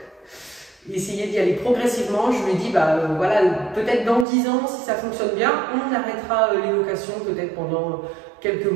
essayer d'y aller progressivement. Je lui ai dit, bah voilà, peut-être dans 10 ans, si ça fonctionne bien, on arrêtera les locations peut-être pendant quelques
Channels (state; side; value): drops out; left; at 4.2 s